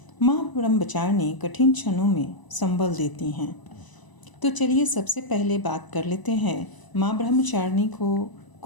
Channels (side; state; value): right; late; 1.0 ms